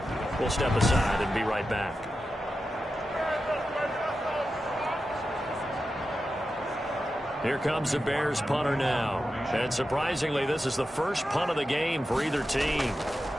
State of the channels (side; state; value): both; normal; correlation 0.91